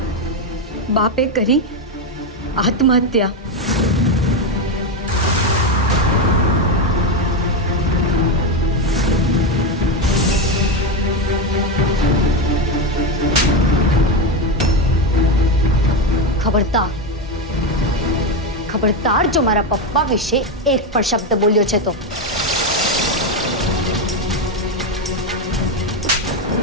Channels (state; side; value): normal; both; correlation 0.10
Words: બાપે કરી આત્મહત્યા. ખબરદાર જો મારા પપ્પા વિશે એક પણ શબ્દ બોલ્યો છે તો